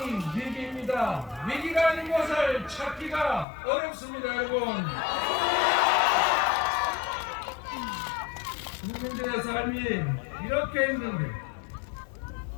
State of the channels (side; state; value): right; drops out; at 3.5 s